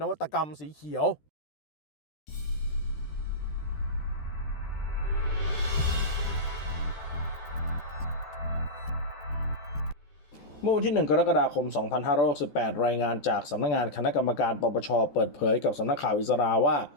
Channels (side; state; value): right; late; 13 ms